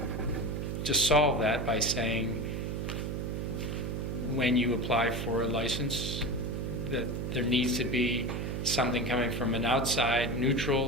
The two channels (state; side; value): noise; right; hum, 2 dB below the sound